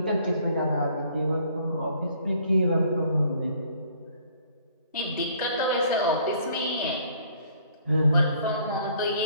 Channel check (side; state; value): both; inverted; correlation -0.59